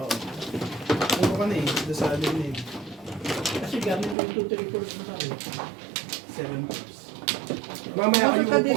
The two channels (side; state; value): left; drops out; at 4.2 s